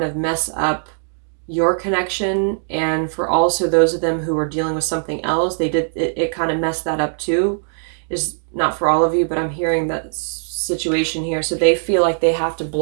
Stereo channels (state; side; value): silent; left; digital silence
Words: of mess up your connection, and for also those of them who are dealing with something else, they did it kind of messed that up too. Is not for all of you, but I'm hearing that situation here. So they feel like they have to